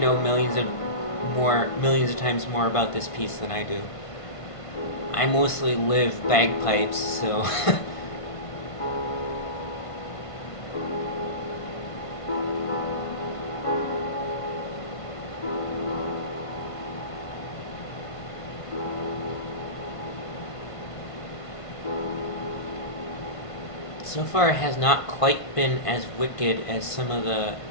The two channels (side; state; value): right; late; 1.5 ms